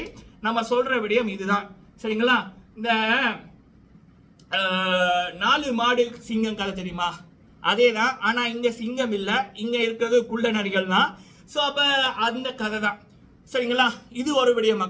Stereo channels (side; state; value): both; identical; correlation 1.00